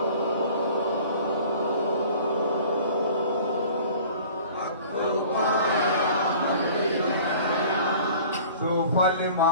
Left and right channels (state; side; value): inverted; both; correlation -0.47